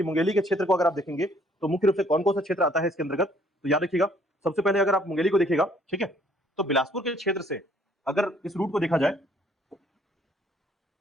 मुंगेली के क्षेत्र को अगर आप देखेंगे तो मुख्य रूप से कौन कौन सा क्षेत्र आता है इसके अंतर्गत, तो याद रखिएगा सबसे पहले अगर आप मुंगेली को देखिएगा, ठीक है, तो बिलासपुर के क्षेत्र से अगर इस रूट को देखा जाए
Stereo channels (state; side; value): normal; both; correlation 0.62